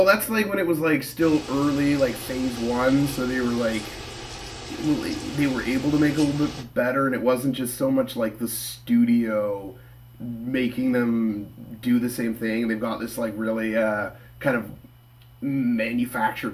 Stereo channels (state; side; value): identical; both; correlation 1.00